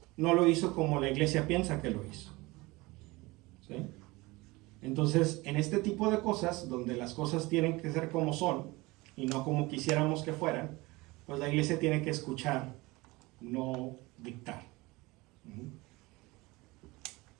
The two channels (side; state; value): left; quieter; 22.4 dB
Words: No lo hizo como la iglesia piensa que lo hizo. ¿Sí? Entonces, en este tipo de cosas, donde las cosas tienen que ser como son y no como quisiéramos que fueran, pues la iglesia tiene que escuchar, no dictar.